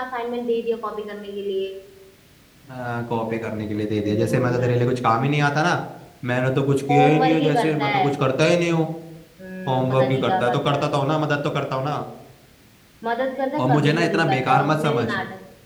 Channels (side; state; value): both; identical; correlation 1.00